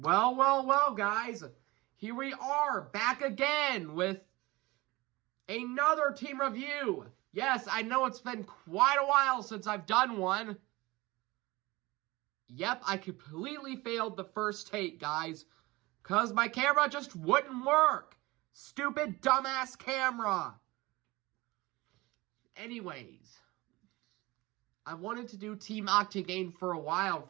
guys. Here we are, back again with another team review. Yes, I know it's been quite a while since I've done one. Yep, I completely failed the first take, guys, because my camera just wouldn't work. Stupid, dumbass camera. Anyways, I wanted to do Team Octane for a while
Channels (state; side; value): quieter; left; 21.3 dB